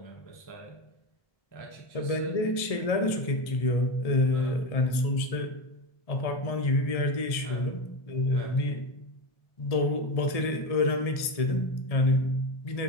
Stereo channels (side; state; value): right; late; 1.7 ms